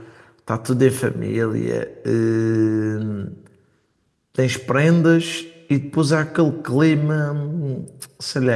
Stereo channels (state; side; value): identical; both; correlation 1.00